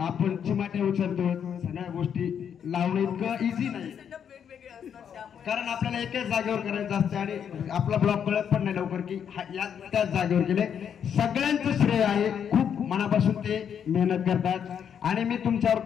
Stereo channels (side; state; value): right; quieter; 8.1 dB